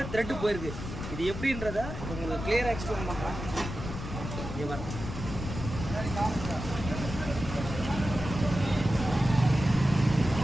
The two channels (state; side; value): noise; left; rumble, 7 dB below the sound